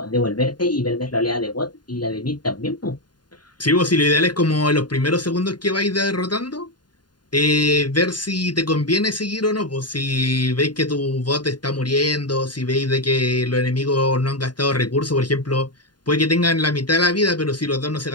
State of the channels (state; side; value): late; right; 0.70 ms